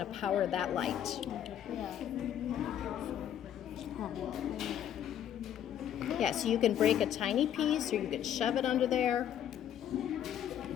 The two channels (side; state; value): right; quieter; 10.2 dB